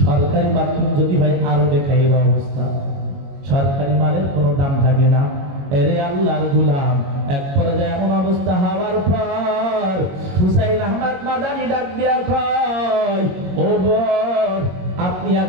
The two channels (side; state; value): left; late; 22 ms